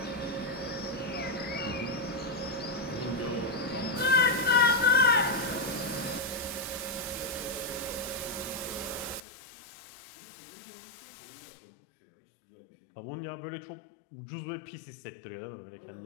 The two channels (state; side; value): drops out; right; at 9.2 s